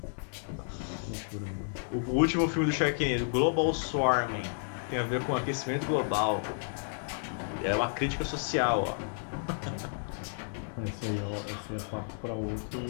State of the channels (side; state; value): right; silent; 57 dB below the other